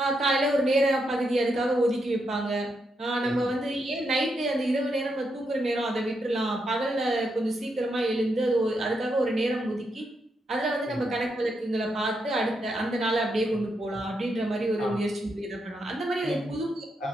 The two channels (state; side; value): normal; both; correlation 0.81